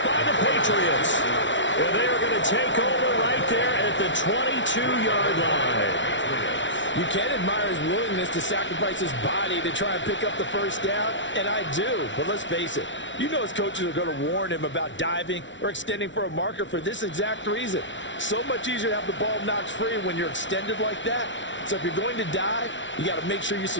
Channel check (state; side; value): late; right; 0.55 ms